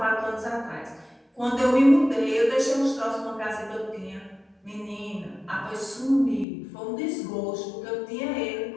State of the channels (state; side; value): drops out; right; at 6.5 s